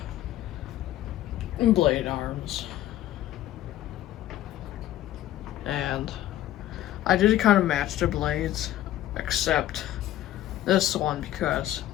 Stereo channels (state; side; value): quieter; right; 13.5 dB